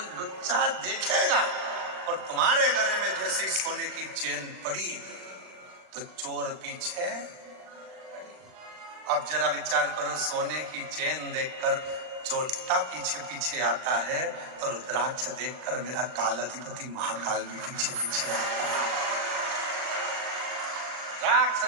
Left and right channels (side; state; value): left; late; 39 ms